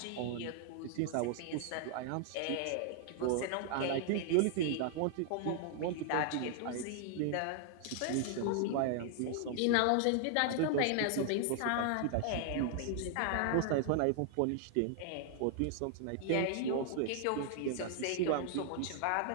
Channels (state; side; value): different; both; correlation 0.00